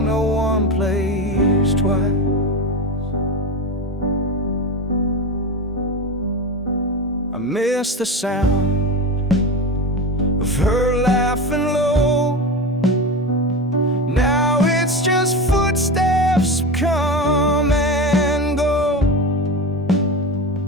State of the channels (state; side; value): normal; both; correlation 0.23